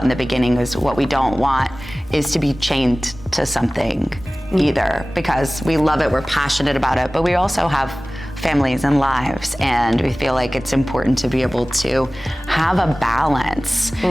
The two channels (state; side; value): normal; both; correlation 0.98